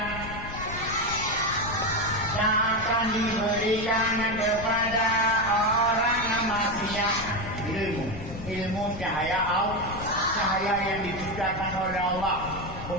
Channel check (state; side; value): noise; left; rumble, 11 dB below the sound